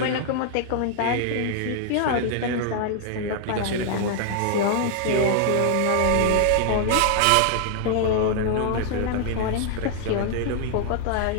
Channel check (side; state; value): both; different; correlation -0.01